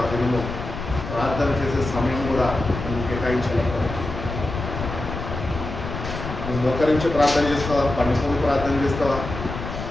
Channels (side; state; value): left; noise; rumble, 7 dB below the sound